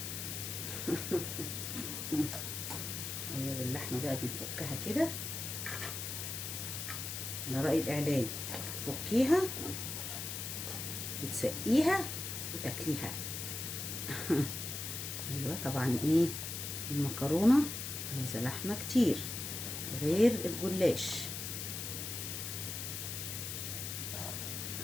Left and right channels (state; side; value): noise; left; hiss, 5 dB below the sound